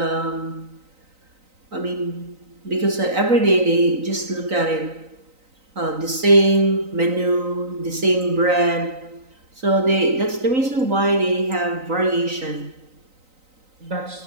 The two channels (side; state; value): left; late; 3.9 ms